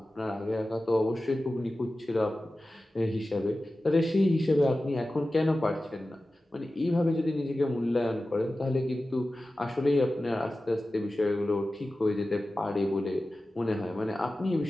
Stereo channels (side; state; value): both; normal; correlation 0.95